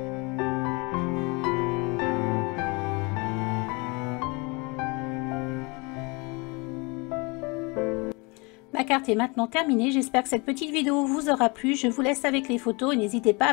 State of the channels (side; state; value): right; quieter; 28.4 dB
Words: Ma carte est maintenant terminée, j'espère que cette petite vidéo vous aura plu. Je vous laisse avec les photos et n'hésitez pas